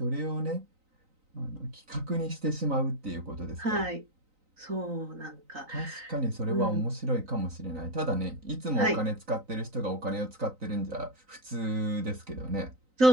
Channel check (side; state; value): left; late; 3.9 ms